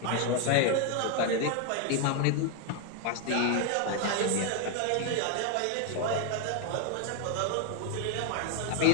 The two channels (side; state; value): both; different; correlation 0.01